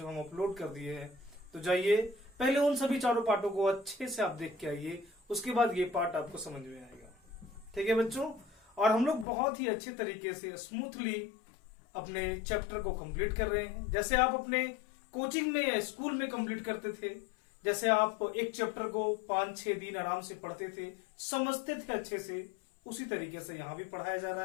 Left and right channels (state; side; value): drops out; right; at 9.2 s